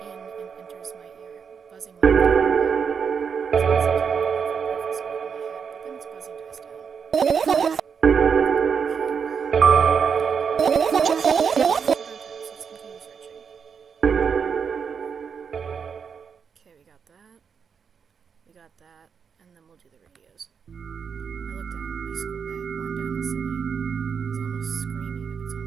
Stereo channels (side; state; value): left; quieter; 6.5 dB